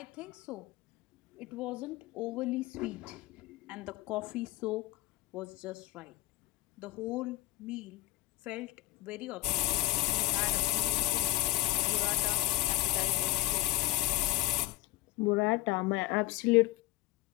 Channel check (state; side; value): quieter; right; 18.4 dB